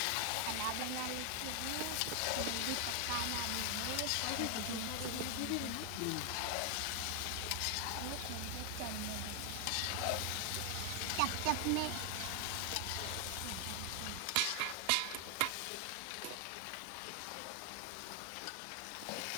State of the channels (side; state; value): both; different; correlation 0.00